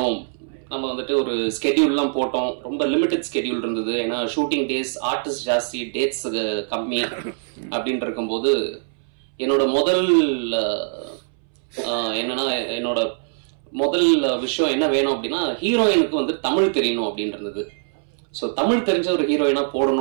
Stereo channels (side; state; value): left; silent; 64 dB below the other